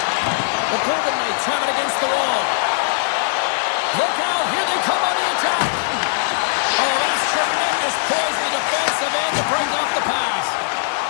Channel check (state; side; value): silent; right; digital silence